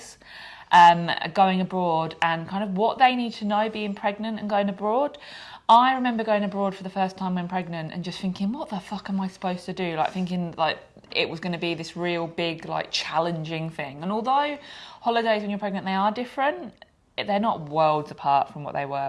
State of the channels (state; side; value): identical; both; correlation 1.00